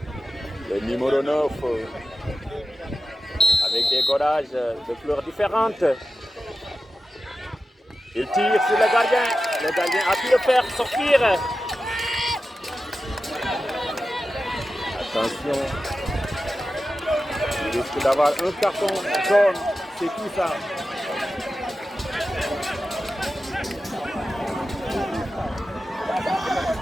Le numéro 9, avec des godages de couleurs différentes. Il tire sur le gardien. Le gardien a pu le faire sortir. Attention. Il risque d'avoir un carton jaune. C'est tout ça.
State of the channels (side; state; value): both; normal; correlation 0.92